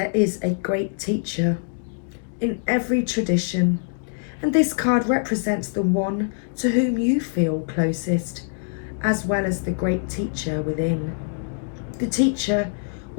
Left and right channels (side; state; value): right; silent; digital silence